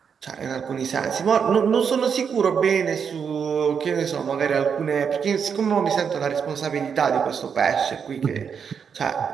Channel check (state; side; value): quieter; left; 6.8 dB